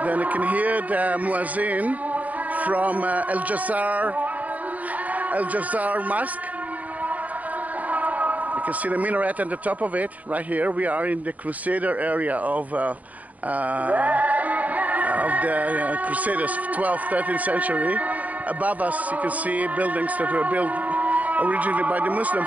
Then you can hear the Muezzin from Al-Jazzar Mosque. You can see the minaret on the top of it right here. We are in the Crusader area of the Crusaders, 12th, 13th century. Above us, you can see buildings that were built originally by the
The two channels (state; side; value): late; left; 0.073 ms